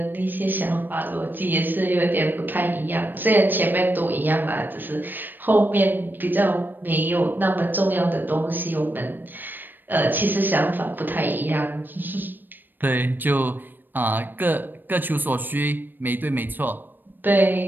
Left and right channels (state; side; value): late; left; 0.092 ms